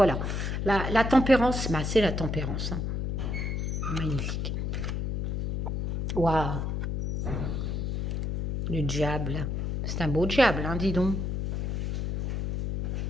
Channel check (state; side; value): noise; left; hum, 1 dB below the sound